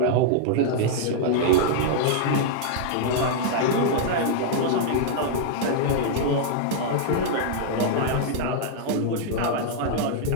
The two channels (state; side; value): different; both; correlation -0.01